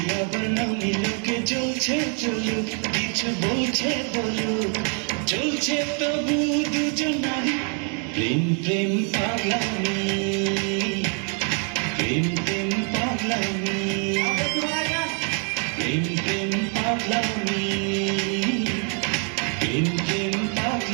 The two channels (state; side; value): quieter; left; 39.6 dB